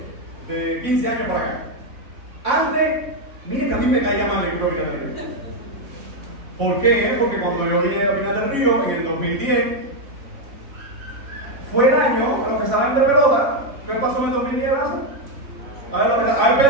de 15 años para acá. Antes, miren que a mí me caía mal el equipo de Pinar del Río. ¿Por qué? Porque cuando yo vine a Pinar del Río en el 2010, fue el año, a los que saben de pelota, ¿qué pasó en el 2010? A ver,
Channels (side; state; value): left; late; 3.6 ms